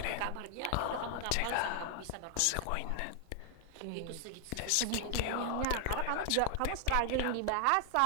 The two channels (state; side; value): different; both; correlation 0.00